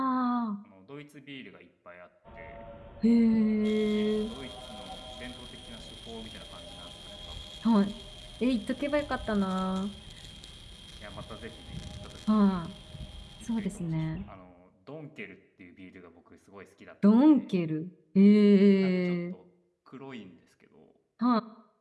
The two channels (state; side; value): identical; both; correlation 1.00